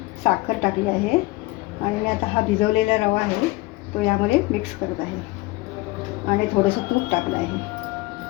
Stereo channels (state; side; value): quieter; right; 21.2 dB